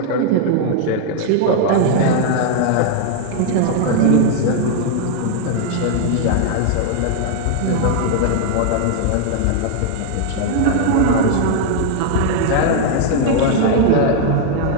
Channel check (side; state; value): both; different; correlation 0.00